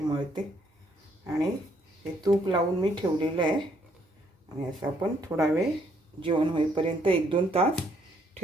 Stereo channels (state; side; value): normal; both; correlation 0.69